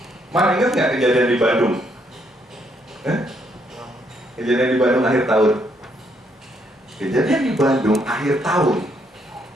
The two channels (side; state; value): both; normal; correlation 0.73